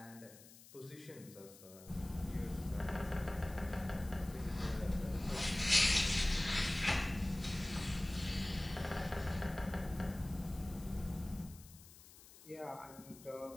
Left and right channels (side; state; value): left; noise; hiss, 20 dB below the sound